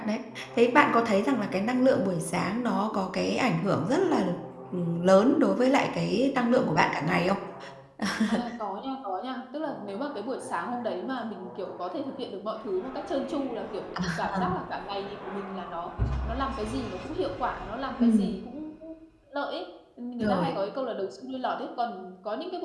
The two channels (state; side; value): identical; both; correlation 1.00